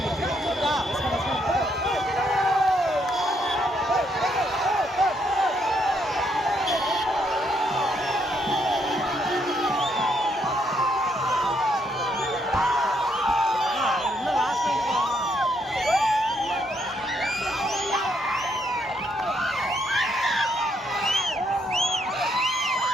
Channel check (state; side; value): normal; both; correlation 0.74